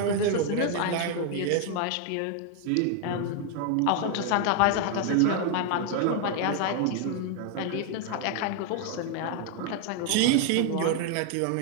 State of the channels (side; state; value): both; different; correlation 0.00